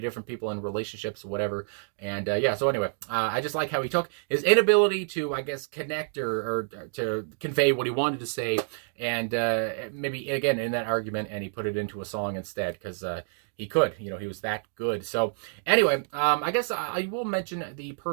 in relationships, whatever. And so anyway, I just like how he took his inability to, I guess, connect or to convey what he wanted to say, and maybe again in that argument, and he put it into a song instead, because he could, he was that good. So anyway, I guess I will mention the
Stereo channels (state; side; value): silent; left; digital silence